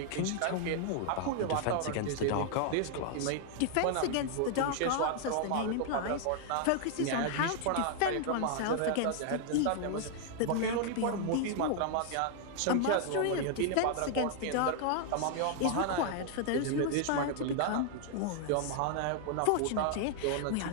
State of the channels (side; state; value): both; different; correlation 0.00